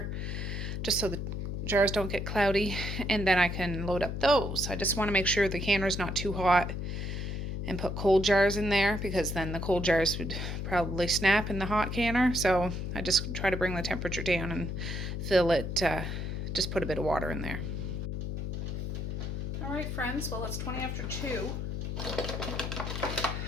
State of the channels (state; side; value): noise; left; hum, 3 dB below the sound